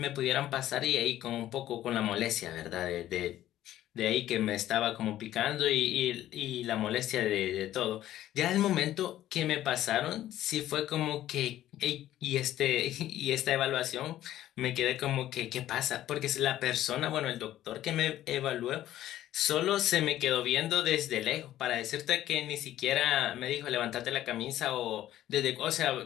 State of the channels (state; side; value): quieter; right; 13.2 dB